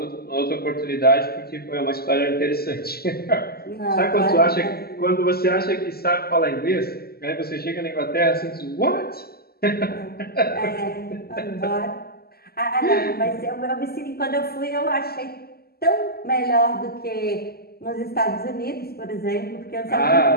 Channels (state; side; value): late; right; 0.45 ms